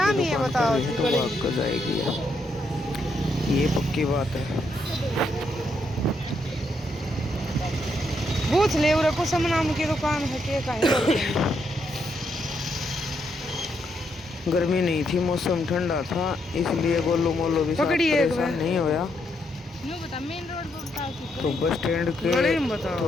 की दुकान कर रही है तो भाग कर जाएगी। ये पक्की बात है। पूछ ले उरे कुसुम नाम की दुकान है के कहीं। गर्मी नहीं थी, मौसम ठंडा था, इसलिए गोलू मोलू भी साथ परेशान नहीं होया। तो बस स्टैंड के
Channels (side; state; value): both; normal; correlation 0.77